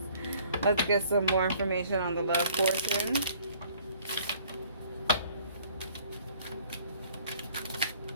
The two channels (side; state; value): both; inverted; correlation -0.57